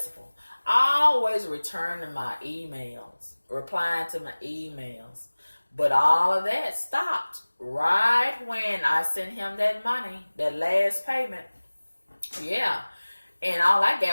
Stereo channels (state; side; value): inverted; both; correlation -1.00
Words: always returning my emails, replying to my emails. But all of that stopped right when I sent him that money, that last payment. Yeah. And all I